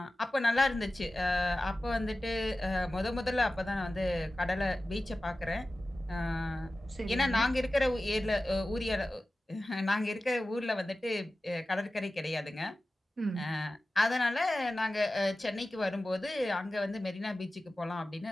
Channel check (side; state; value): both; normal; correlation 0.95